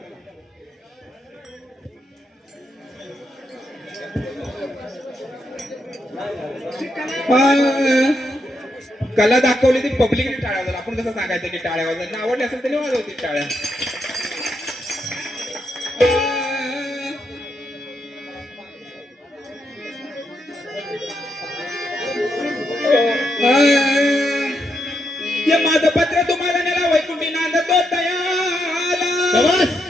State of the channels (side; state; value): both; normal; correlation 0.80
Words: कला दाखवली ती पब्लिकने टाळ्या वाजवल्या. आपण कसं सांगायचं की टाळ्या वाजवल्या आवडली असेल तरी वाजवतील टाळ्या. हे माझं पत्र तुम्हाला नेला वैकुंठी नांदतो दयाला